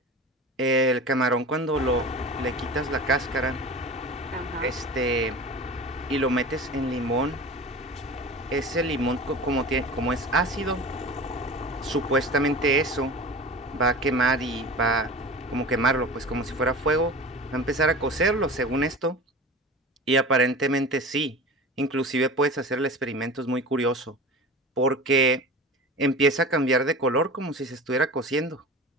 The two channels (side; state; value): both; normal; correlation 0.34